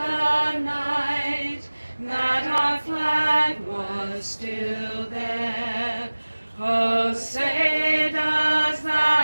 night that our flag was still there. Oh, say does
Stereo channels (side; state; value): both; inverted; correlation -1.00